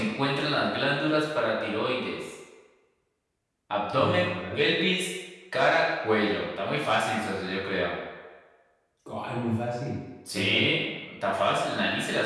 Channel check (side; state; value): both; identical; correlation 1.00